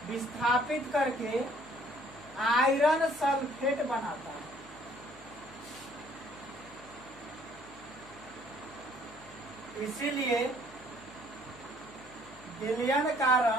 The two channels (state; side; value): noise; left; hum, 23 dB below the sound